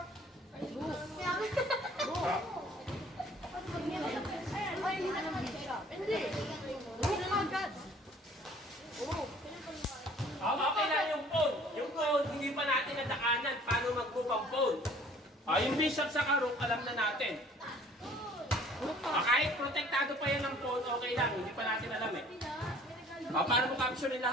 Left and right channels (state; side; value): normal; both; correlation 0.54